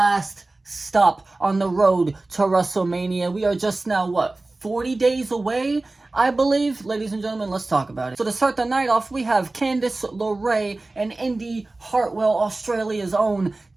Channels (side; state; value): left; quieter; 3.1 dB